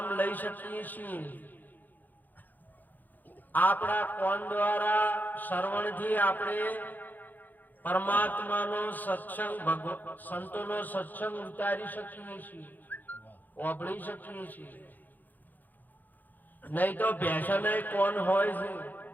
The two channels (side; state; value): right; late; 0.085 ms